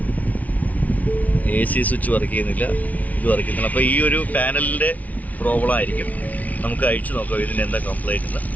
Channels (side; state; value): right; late; 0.073 ms